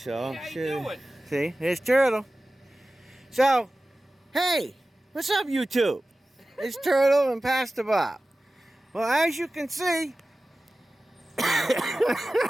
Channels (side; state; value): both; normal; correlation 0.96